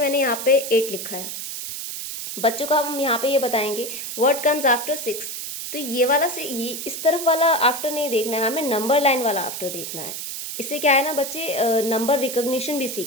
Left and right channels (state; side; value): noise; right; hiss, 6 dB below the sound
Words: यहाँ पे 8 लिखा है, बच्चों को हम यहाँ पे ये बताएंगे व्हाट कम्स आफ्टर 6, तो ये वाला से ये इस तरफ वाला आफ्टर नहीं देखना है, हमें नंबर लाइन वाला आफ्टर देखना है। इससे क्या है ना, बच्चे नंबर रिकॉग्निशन भी